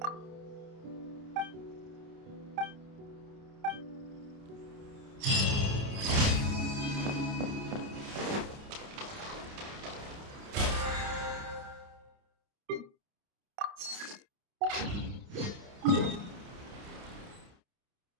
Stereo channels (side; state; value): left; late; 29 ms